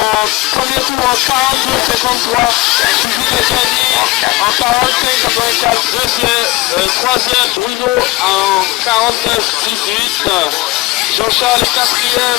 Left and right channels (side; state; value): right; quieter; 20.7 dB